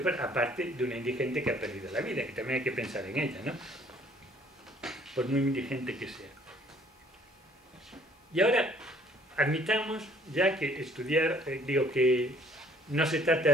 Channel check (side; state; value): both; normal; correlation 0.59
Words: peor, aparte de una indigente que ha perdido la vida, que también hay que pensar en ella, ¿no? Por muy indigente que sea. Y ahora, admitamos ya que estudiar, digo que no se trata de